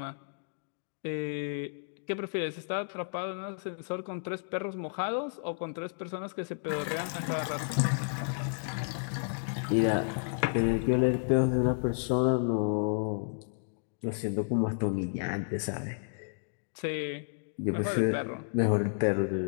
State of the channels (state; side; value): silent; right; digital silence